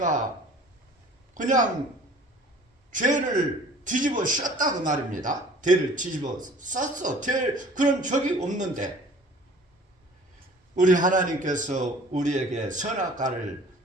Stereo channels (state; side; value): normal; both; correlation 0.49